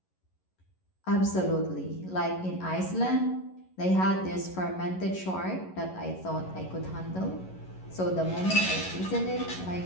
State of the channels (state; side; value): late; right; 11 ms